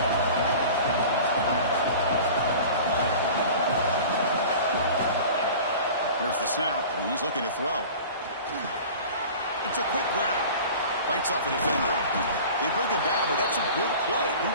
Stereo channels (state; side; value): inverted; both; correlation -0.40